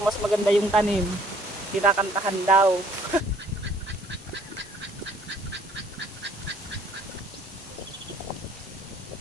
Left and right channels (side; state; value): both; normal; correlation 0.59